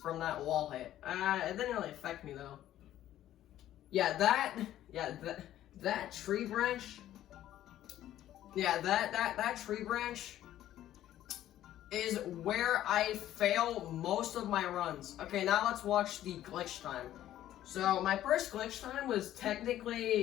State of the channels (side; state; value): right; quieter; 12.7 dB